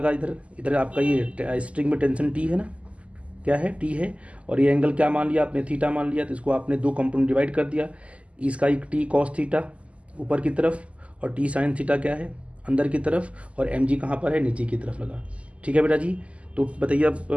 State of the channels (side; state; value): left; late; 0.062 ms